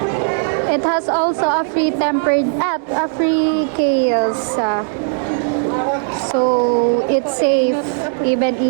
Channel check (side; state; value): left; silent; digital silence